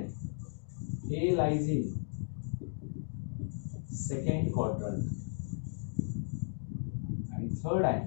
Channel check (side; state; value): right; silent; digital silence